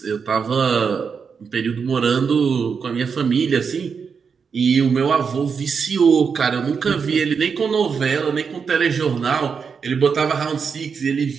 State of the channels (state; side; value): quieter; left; 6.0 dB